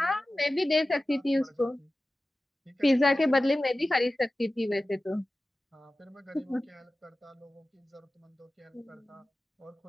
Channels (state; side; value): normal; both; correlation 0.95